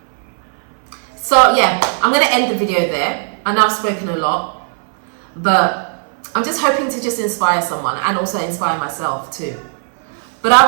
So yeah, I'm going to end the video there. I know I've spoken a lot, but I'm just hoping to just inspire someone and also inspire myself too. But I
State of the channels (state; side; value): silent; left; 56 dB below the other